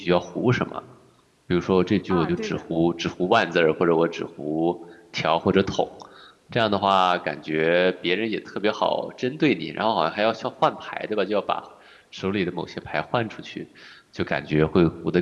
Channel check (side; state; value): both; identical; correlation 1.00